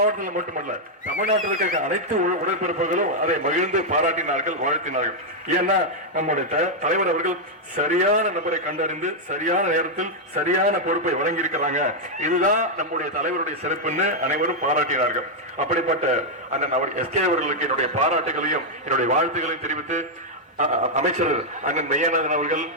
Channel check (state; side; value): normal; both; correlation -0.02